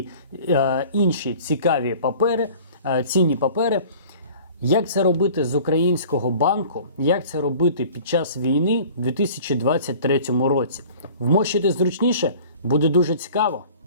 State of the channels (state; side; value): inverted; both; correlation -0.46